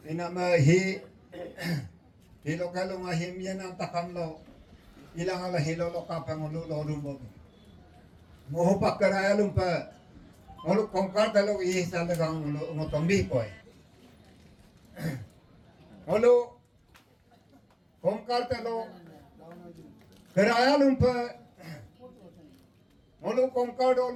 inama hi hilo kalunga him yan ang takam lo ilang ala hilo lo kapangulu lodum bom moho pakaraya lumpa ngolu kongkar talo i sa dagang ngotombi koy ngolu kongkar talo keraya lumpa ngolu kongkar do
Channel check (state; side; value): identical; both; correlation 1.00